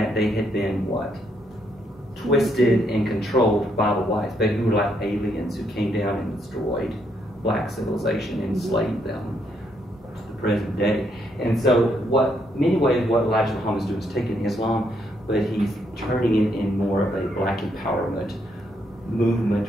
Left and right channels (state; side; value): normal; both; correlation 0.75